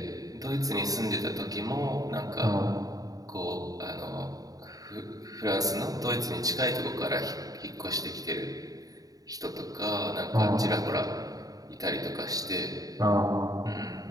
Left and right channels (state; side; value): late; left; 0.18 ms